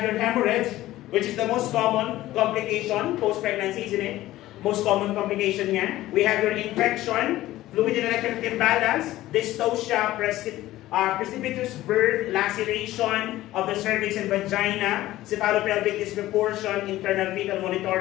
your hemorrhage, which is the most common complication post-pregnancy, isn't it? Most common complication niya. We have your infection, fluid and electric imbalance, dystocia, precipitous birth, laceration of the cervix and vagina, cephalopelvic disproportion, internal fetal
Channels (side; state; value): right; quieter; 15.7 dB